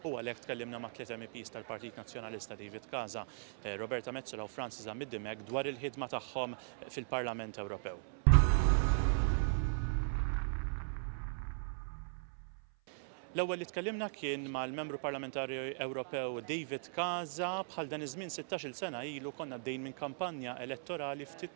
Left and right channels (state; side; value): silent; left; 52 dB below the other